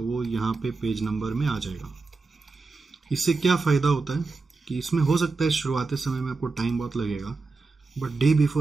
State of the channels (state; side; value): quieter; left; 4.0 dB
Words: वो यहाँ पे पेज नंबर में आ जाएगा। इससे क्या फ़ायदा होता है कि इसमें हो सकता है शुरुआती समय में आपको टाइम बहुत लगेगा, बट डे